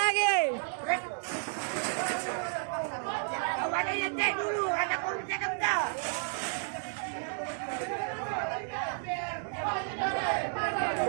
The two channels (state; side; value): silent; left; 56 dB below the other